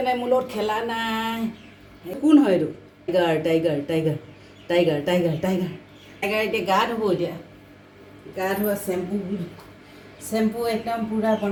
নাই, মোৰ লগত খেলা নাই। কোন হয় এইটো? Tiger tiger tiger tiger tiger tiger এতিয়া গা ধুব। এতিয়া গা ধোৱা চেম্পু একদম পূৰা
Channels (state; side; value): identical; both; correlation 1.00